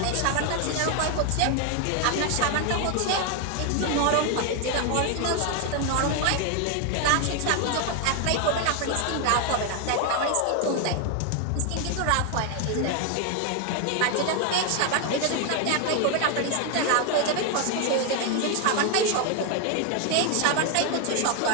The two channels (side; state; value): both; different; correlation 0.01